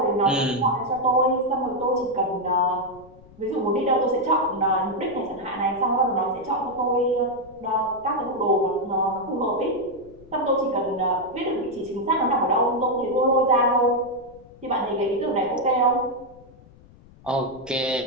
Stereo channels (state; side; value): noise; left; rumble, 24 dB below the sound